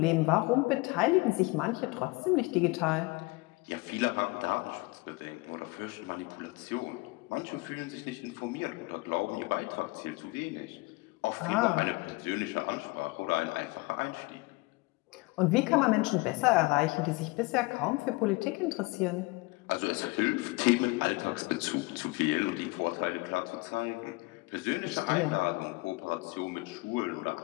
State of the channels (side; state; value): right; quieter; 24.3 dB